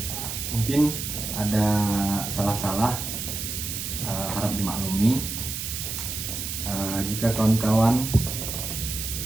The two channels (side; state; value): right; noise; hiss, 5 dB below the sound